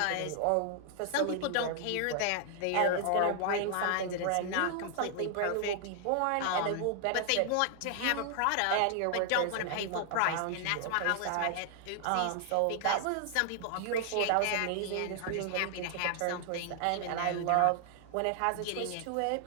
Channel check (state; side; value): different; both; correlation 0.00